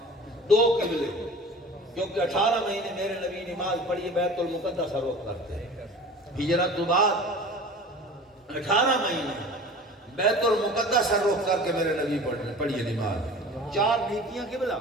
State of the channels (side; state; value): both; normal; correlation 0.40